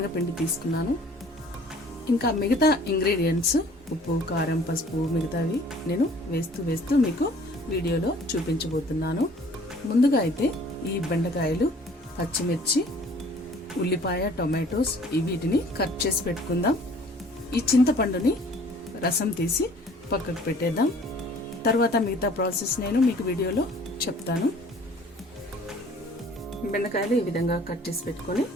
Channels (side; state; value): both; normal; correlation 0.53